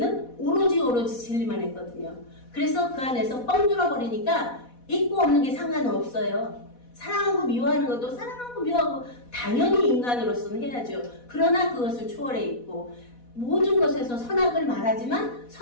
오로지 진리만 했거든요. 그래서 그 안에서 뻥 뚫어버리니까 있고 없는 게 상관없어요. 사랑하고 미워하는 것도 사랑하고 미워하고 당연히 인간으로서는 해야죠. 그러나 그것을 초월해 있고 모든 것에서 선악을 말하지만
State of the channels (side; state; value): right; late; 4.1 ms